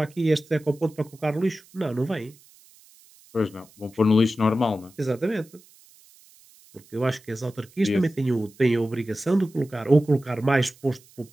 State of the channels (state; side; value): noise; right; hiss, 27 dB below the sound